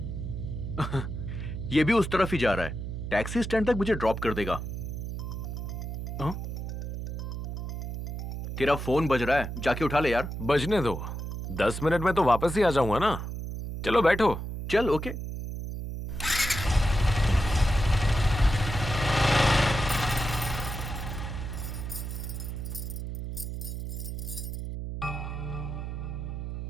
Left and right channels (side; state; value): right; noise; hum, 5 dB below the sound